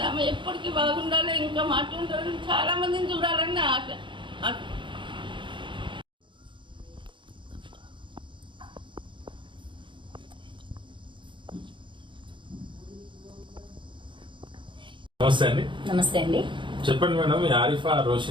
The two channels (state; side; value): late; left; 0.23 ms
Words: ఆమె ఎప్పటికీ బాగుండాలి, ఇంకా మాట్లాడాలని చాలా మందిని చూడాలని ఆశ. నమస్తే అండి. నమస్తే అండి. చెప్పండి మేడం, ఆరిఫా